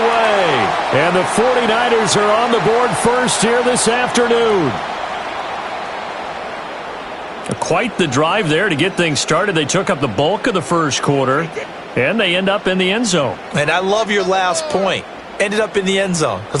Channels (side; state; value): both; identical; correlation 1.00